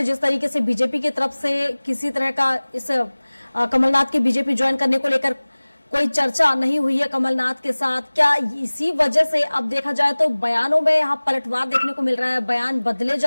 जिस तरीके से बीजेपी की तरफ से किसी तरह का इस कमलनाथ के बीजेपी ज्वाइन करने को लेकर कोई चर्चा नहीं हुई है कमलनाथ के साथ, क्या इसी वजह से अब देखा जाए तो बयानों में यहाँ पलटवार देखने को मिल रहा है, बयान बदले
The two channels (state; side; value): inverted; both; correlation -1.00